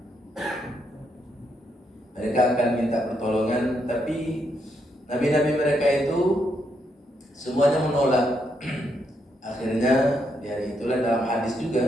Mereka akan minta pertolongan, tapi nabi-nabi mereka itu semuanya menolak. Akhirnya di hari itulah dalam hadis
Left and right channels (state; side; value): normal; both; correlation 0.78